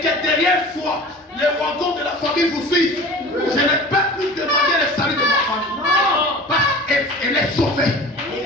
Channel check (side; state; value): both; normal; correlation 0.39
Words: derrière soi, les wagons de la famille vous suivent. Je n'ai pas pu demander le salut de ma famille. Parce qu'elle est sauvée.